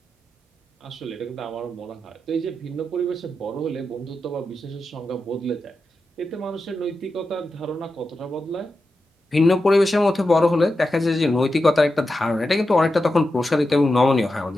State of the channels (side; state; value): both; normal; correlation 0.90